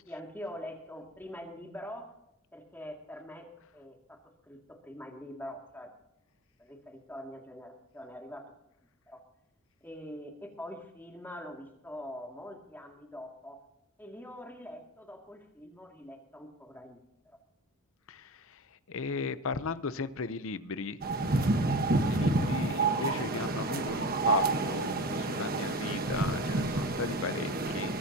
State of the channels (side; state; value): both; normal; correlation 0.29